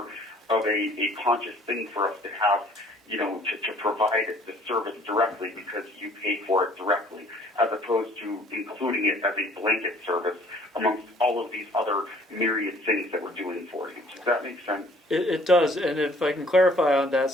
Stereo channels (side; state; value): both; normal; correlation 0.56